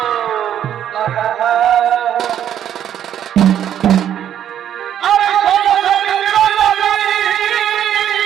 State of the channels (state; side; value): quieter; left; 10.2 dB